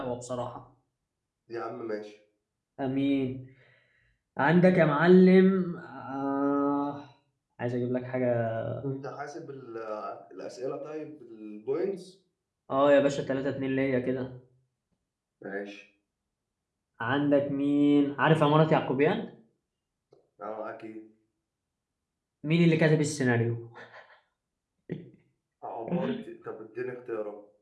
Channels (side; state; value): both; identical; correlation 1.00